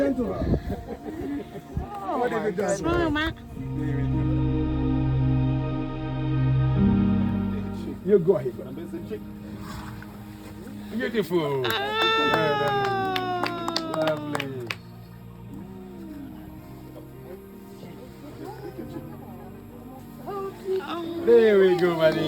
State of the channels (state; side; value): identical; both; correlation 1.00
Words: to her? What have you done? Smile, Matt. You go ahead. Beautiful. Lovely. There we go,